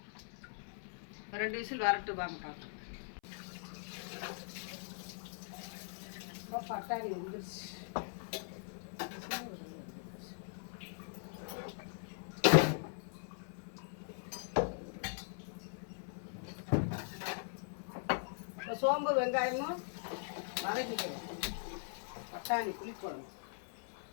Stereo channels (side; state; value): right; silent; 51 dB below the other